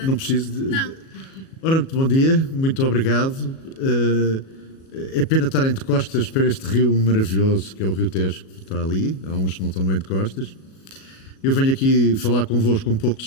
Não preciso de... Não. Ora, muito bom dia, muito obrigado. É pena estarem de costas para este rio maravilhoso que é o Rio Tejo, que está ali. Há uns que não estão bem de costas. Eu venho aqui falar convosco um pouco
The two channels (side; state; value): right; late; 37 ms